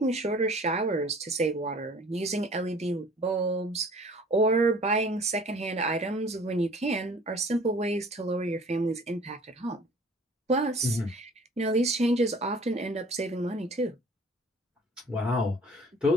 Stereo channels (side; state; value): both; normal; correlation 0.49